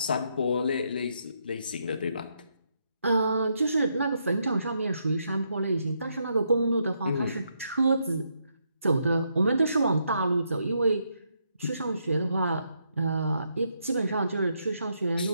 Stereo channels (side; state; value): both; inverted; correlation -0.78